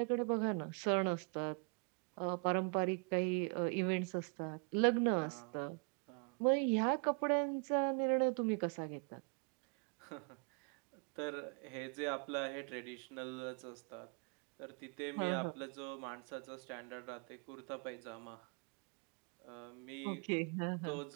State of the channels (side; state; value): left; quieter; 36.9 dB